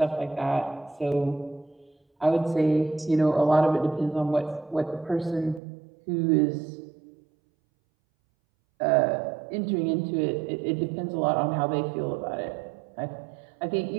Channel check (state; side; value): drops out; left; at 5.6 s